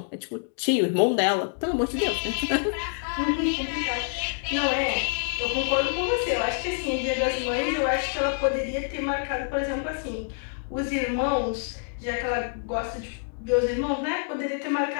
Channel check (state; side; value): silent; right; digital silence